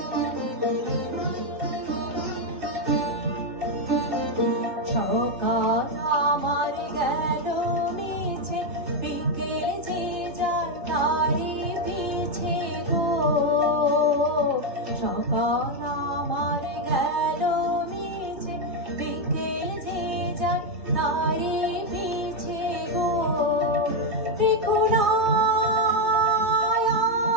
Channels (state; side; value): late; left; 2.8 ms